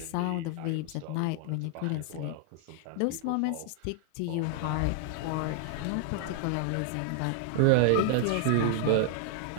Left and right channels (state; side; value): different; both; correlation 0.00